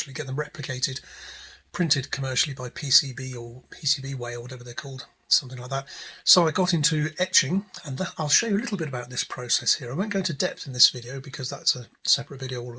get them replicated, printed commercially by PCB or PCBWay or whatever they're called, something like that. So I got into etching, and I'll show you a little bit about this process here. I won't go into depth in this video because that's a separate video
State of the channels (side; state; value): both; identical; correlation 1.00